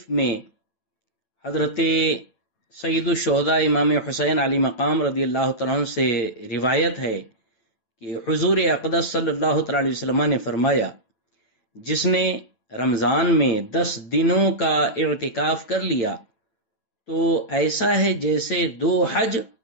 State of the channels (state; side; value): late; right; 9.0 ms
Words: میں حضرت سید الشہداء امام حسین علی مقام رضی اللہ تعالیٰ عنہ سے روایت ہے کہ حضور اقدس صلی اللہ تعالیٰ علیہ وسلم نے فرمایا، جس نے رمضان میں 10 دنوں کا اعتکاف کر لیا تو ایسا ہے جیسے 2 حج